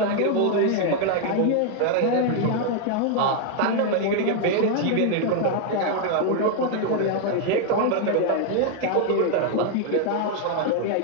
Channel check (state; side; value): different; both; correlation 0.00